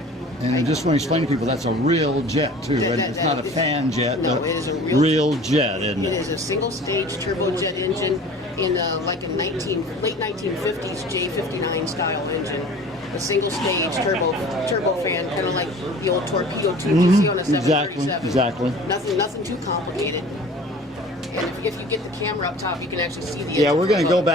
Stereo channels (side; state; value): both; normal; correlation 0.44